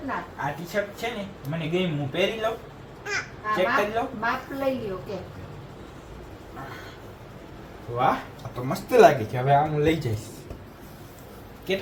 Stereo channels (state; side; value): identical; both; correlation 1.00